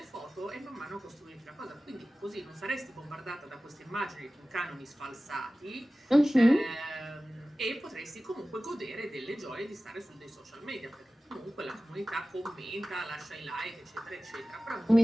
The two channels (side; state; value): both; normal; correlation 0.96